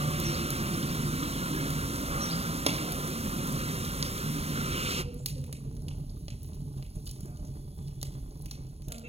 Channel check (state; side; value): late; left; 0.30 ms